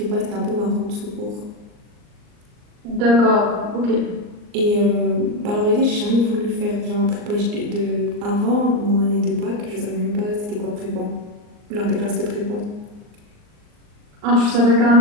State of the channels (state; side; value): late; left; 39 ms